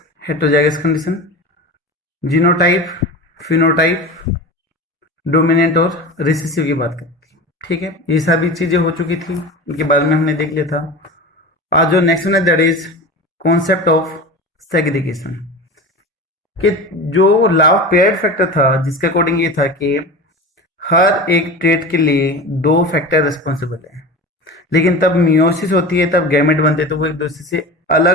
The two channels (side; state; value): both; normal; correlation 0.30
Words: heterozygous condition, genotype, phenotype, dominant और रिसेसिव की बात करी थी। ठीक है, ये सभी चीजें हो चुकी थी, इनके बारे में हमने देख लिया था। आज जो नेक्स्ट वन है that is concept of segregation कि जो लॉ ऑफ पेयर्ड फैक्टर था, जिसके अकॉर्डिंग ये था कि हर एक ट्रेट के लिए दो फैक्टर रिस्पॉन्सिबल है, लेकिन तब मियोसिस होती है, तब गैमेट बनते हैं तो वो एक दूसरे से